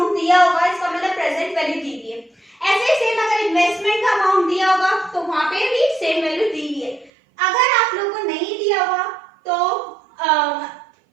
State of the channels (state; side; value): drops out; left; at 7.1 s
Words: दिया होगा, इसका मतलब प्रेजेंट वैल्यू दी हुई है। ऐसे ही सेम अगर इन्वेस्टमेंट का अमाउंट दिया होगा तो वहां पे भी सेम वैल्यू दी हुई है। अगर आप लोग को नहीं दिया हुआ तो